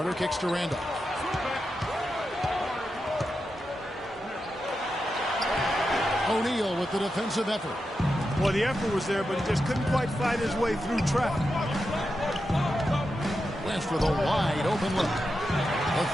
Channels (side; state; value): both; normal; correlation 0.88